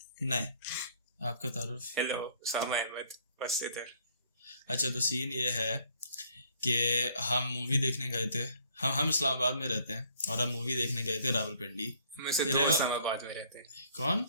नहीं, आपका तारुफ। हेलो, उसामा अहमद, बस इधर। अच्छा, तो सीन ये है कि हम मूवी देखने गए थे। हम इस्लामाबाद में रहते हैं और हम मूवी देखने गए थे रावलपिंडी। हम में से 2 इस्लामाबाद में रहते हैं। कौन?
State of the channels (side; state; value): both; inverted; correlation -0.61